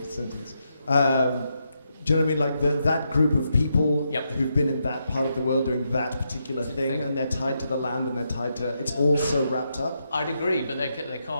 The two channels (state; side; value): inverted; both; correlation -0.82